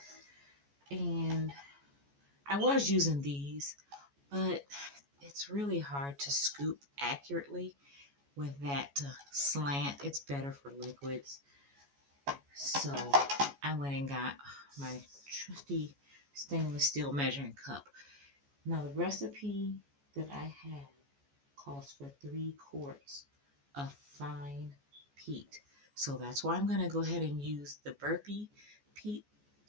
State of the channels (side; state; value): left; late; 14 ms